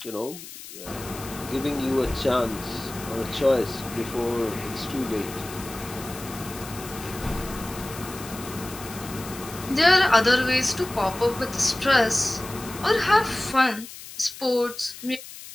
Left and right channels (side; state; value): left; noise; hiss, 14 dB below the sound